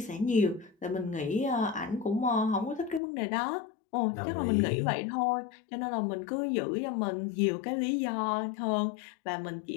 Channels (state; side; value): drops out; right; at 3.0 s